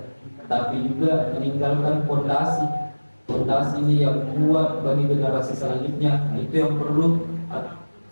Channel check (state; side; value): inverted; both; correlation -1.00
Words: tapi juga meninggalkan fondasi ini yang kuat bagi generasi selanjutnya. Nah, itu yang